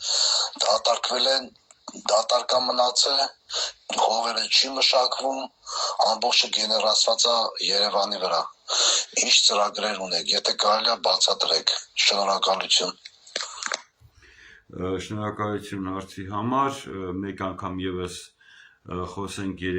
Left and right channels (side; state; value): both; identical; correlation 1.00